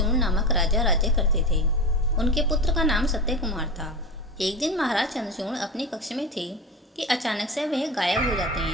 नामक राजा राज्य करते थे। उनके पुत्र का नाम सत्य कुमार था। एक दिन महाराज चंद्रचूड़ अपने कक्ष में थे कि अचानक से वह गायब हो जाते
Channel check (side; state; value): both; normal; correlation 0.26